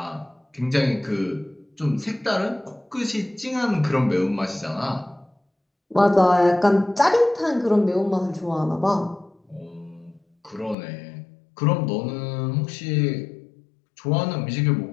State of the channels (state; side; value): drops out; right; at 10.8 s